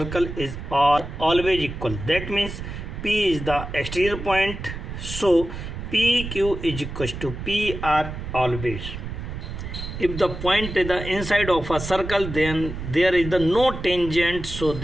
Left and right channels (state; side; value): noise; right; rumble, 8 dB below the sound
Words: is always equal. That means P is the exterior point, so PQ is equals to PR always. If the point is the inside of a circle, then there is the no tangent, so